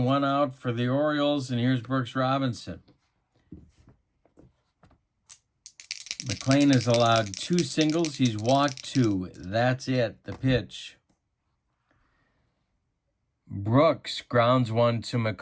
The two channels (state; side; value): identical; both; correlation 1.00